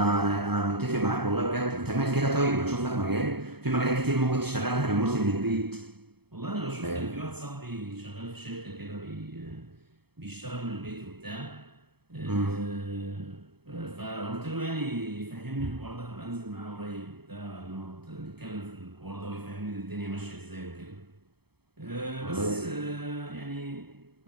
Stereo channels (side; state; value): left; late; 0.97 ms